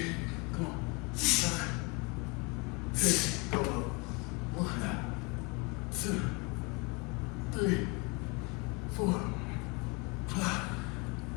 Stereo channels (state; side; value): quieter; right; 28.3 dB